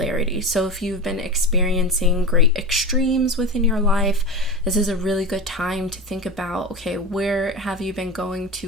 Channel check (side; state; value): both; normal; correlation 0.26